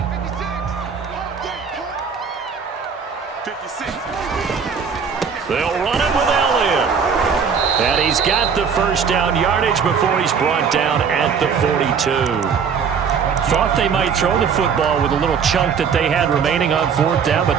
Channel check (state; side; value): quieter; left; 6.5 dB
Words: He's got the first down yardage before he's brought down at the 42. Thought they might throw the football with a little chunk that they had remaining on fourth down, but